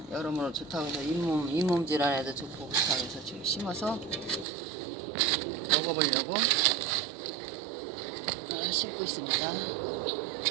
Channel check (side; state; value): left; drops out; at 4.5 s